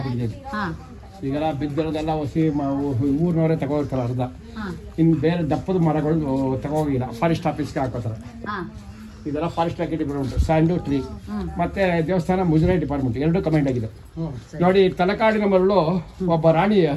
ಈಗೆಲ್ಲ ಬಿದ್ದಿರೋದೆಲ್ಲ ಹೊಸಿ ಊರಿನವರೇ ತಗೋರ್ತಾರೆ ಅರ್ಧ. ಇನ್ನು ಬೇರೆ ದಪ್ಪದ ಮರಗಳು ತಗೋಗಿಲ್ಲ, ಫಾರೆಸ್ಟ್ ಆಫೀಸ್ಗೆ ಹಾಕೋತಾರೆ. ಇದೆಲ್ಲ ಫಾರೆಸ್ಟ್ ಡಿಪಾರ್ಟ್ಮೆಂಟ್, ಸ್ಯಾಂಡು ಟ್ರೀ. ಮತ್ತೆ ದೇವಸ್ಥಾನ ಮುಜರಾಯಿ ಡಿಪಾರ್ಟ್ಮೆಂಟ್, ಎರಡೂ ಕಮೆಂಟ್ ಆಗಿದೆ. ನೋಡಿ, ತಲಕಾಡಿನ ಮರಳು ಒಬ್ಬ ರಾಣಿ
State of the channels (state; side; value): identical; both; correlation 1.00